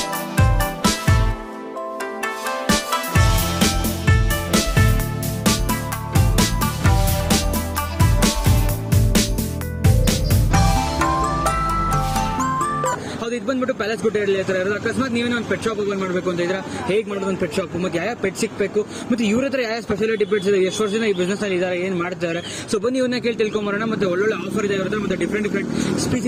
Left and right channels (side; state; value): both; identical; correlation 1.00